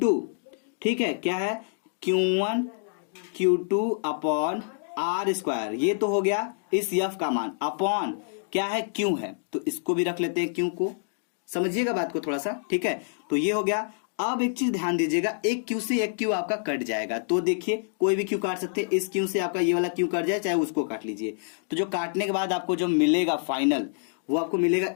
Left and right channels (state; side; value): silent; right; digital silence